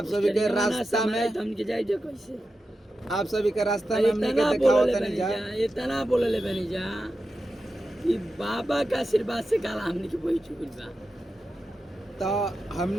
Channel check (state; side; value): normal; both; correlation 0.91